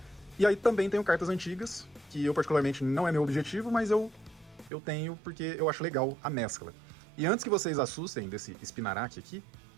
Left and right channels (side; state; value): left; drops out; at 4.7 s